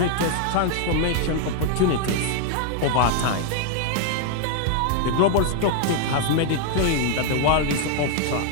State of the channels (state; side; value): different; both; correlation 0.00